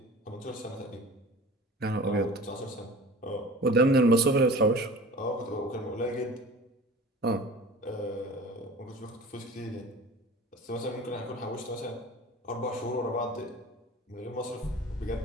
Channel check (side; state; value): both; normal; correlation 0.39